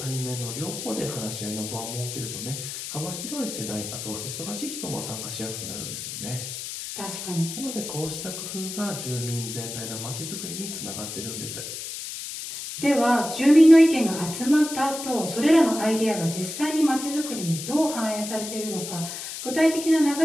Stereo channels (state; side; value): noise; left; hiss, 7 dB below the sound